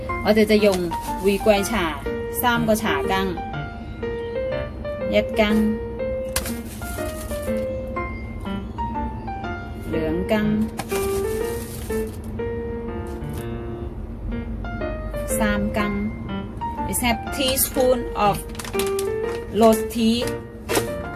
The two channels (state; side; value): identical; both; correlation 1.00